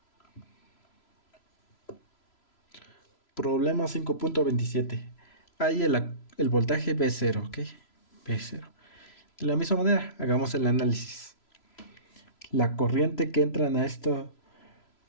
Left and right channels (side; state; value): right; late; 3.0 ms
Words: Problema 5.27. Hay el voltaje V0, ¿ok? V0. De la misma manera, hagamos el análisis. La corriente que entra